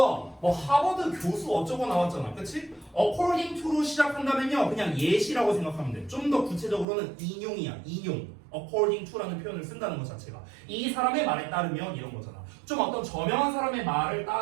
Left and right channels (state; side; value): drops out; left; at 6.9 s